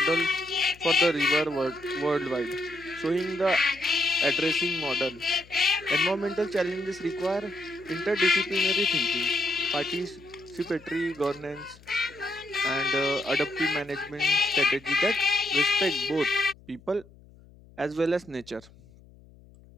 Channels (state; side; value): noise; left; hum, 24 dB below the sound